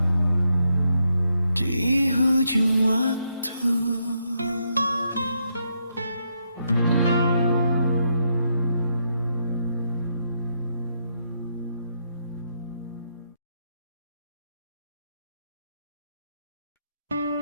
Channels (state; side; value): inverted; both; correlation -0.79